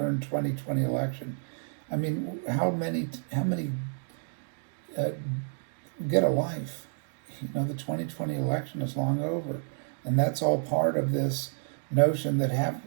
2020 election. I mean, how many get a life? The 2020 election is long over, and that's all part of this notion that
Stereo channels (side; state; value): left; silent; digital silence